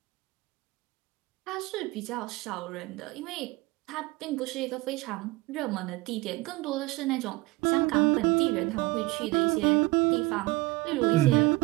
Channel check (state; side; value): quieter; left; 21.6 dB